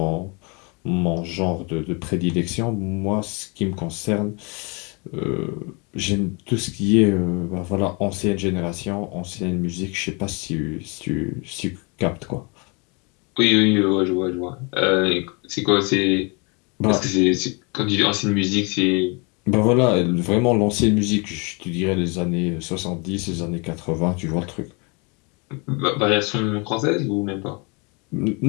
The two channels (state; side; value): quieter; right; 31.3 dB